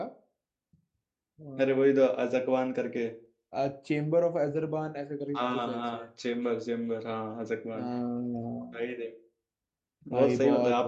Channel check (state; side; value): identical; both; correlation 1.00